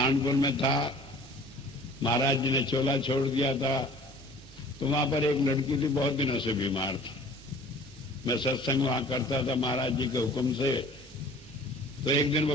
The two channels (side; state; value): both; normal; correlation 0.48